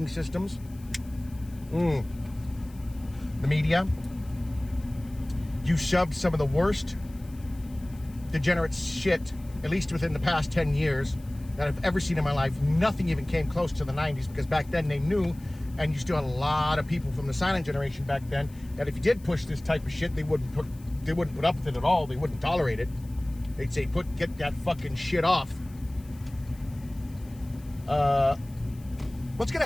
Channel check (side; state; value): left; noise; hiss, 26 dB below the sound